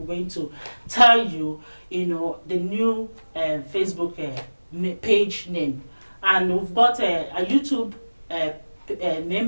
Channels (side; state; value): both; inverted; correlation -1.00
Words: going to tell you, you know, the new Facebook page name, and we've got a YouTube